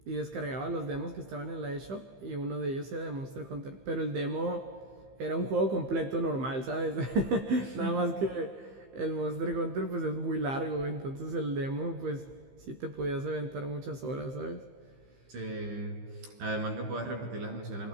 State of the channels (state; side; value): late; left; 15 ms